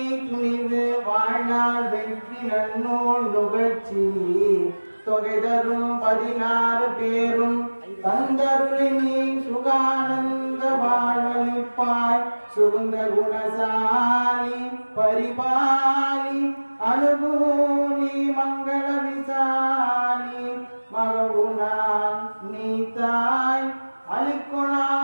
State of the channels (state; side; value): inverted; both; correlation -1.00